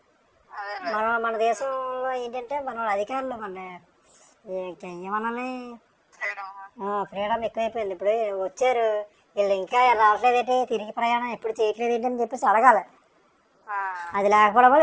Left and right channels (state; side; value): identical; both; correlation 1.00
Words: మన దేశంలో ఏంటంటే మన అధికారులు మన ఏమనాలి ఫ్రీడమ్ ఎక్కువైపోయింది. ఇప్పుడు వచ్చారు వీళ్ళు ఇంకా రావట్లేదేంటి, తిరిగి ప్రయాణం ఎప్పుడు చేయట్లేదేంటి అని చెప్పేసి అడగాలి. అది లేకపోవడం వల్ల